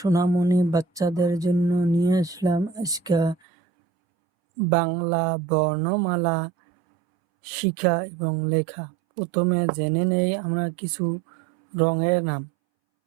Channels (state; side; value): drops out; left; at 3.4 s